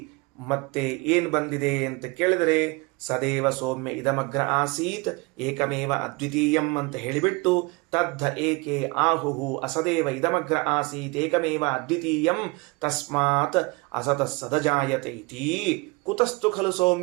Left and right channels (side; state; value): left; quieter; 26.8 dB